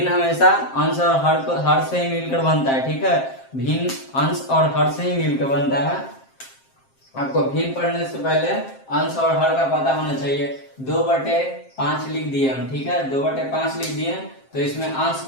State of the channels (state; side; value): late; right; 7.5 ms